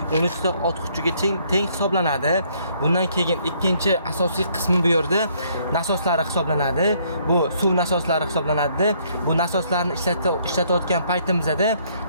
13 ta ot kuchiga teng hisoblanadi. Bundan keyin ikkinchi asosiy qismi bu yerda nasoslari hisoblanadi. Bu suv nasoslari hisoblanadi. Bu nasoslarni ishlatayotgan paytimizda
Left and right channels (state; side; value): inverted; both; correlation -0.66